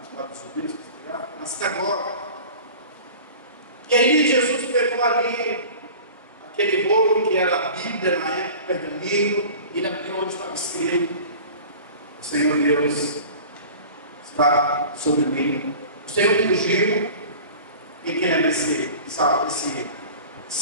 subida? Na sinagoga. E aí Jesus pegou ali aquele rolo que era a Bíblia na época, pergaminho, e ele abriu onde estava escrito: o Senhor Deus está sobre mim. O Senhor me ungiu. E quem lembra esse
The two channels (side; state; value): both; inverted; correlation -0.40